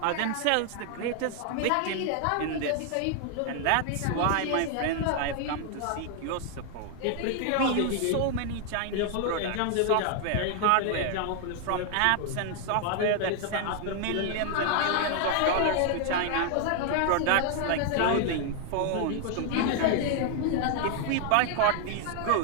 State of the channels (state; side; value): different; both; correlation 0.00